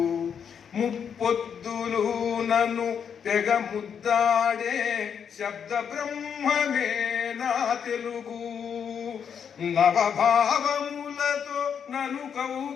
ముప్పొద్దులు నన్ను తెగ ముద్దాడే శబ్ద బ్రహ్మమే నా తెలుగు నవభావములతో నన్ను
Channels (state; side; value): quieter; right; 7.5 dB